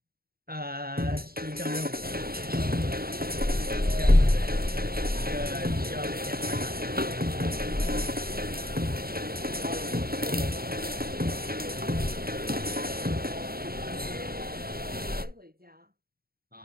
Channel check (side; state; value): left; late; 0.44 ms